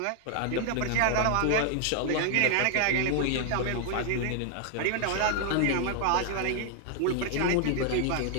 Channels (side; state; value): both; different; correlation 0.00